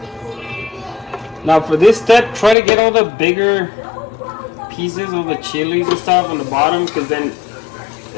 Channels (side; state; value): right; drops out; at 2.6 s